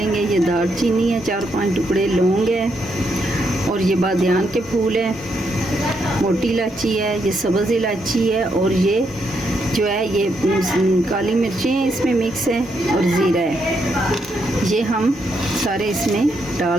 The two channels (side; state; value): both; normal; correlation 0.78